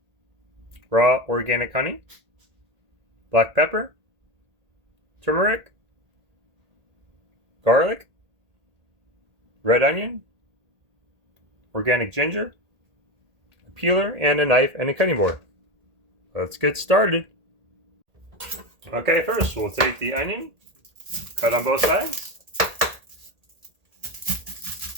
raw organic honey, black pepper, turmeric, garlic, red onion, organic ginger, a peeler, and a knife and a cutting board. Let's get started. Okay, first we'll take the onion, cut on both sides.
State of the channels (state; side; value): late; left; 1.8 ms